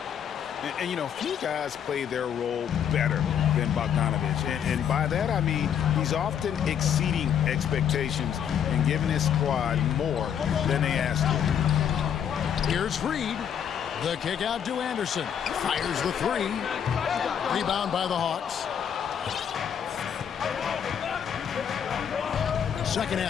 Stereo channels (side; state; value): right; quieter; 8.5 dB